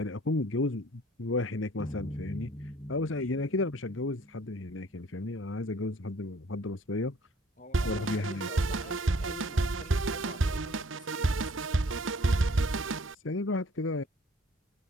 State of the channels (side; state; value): both; normal; correlation 0.55